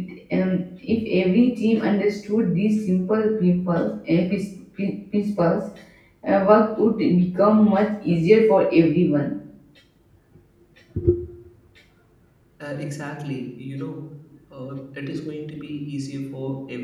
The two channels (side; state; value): both; identical; correlation 1.00